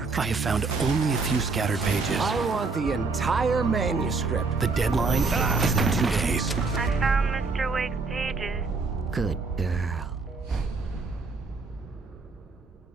I have found only a few scattered pages. I want the entire manuscript. The deadline is in 2 days. I found Mr. Wake's pages. Good girl.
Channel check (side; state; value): left; quieter; 4.1 dB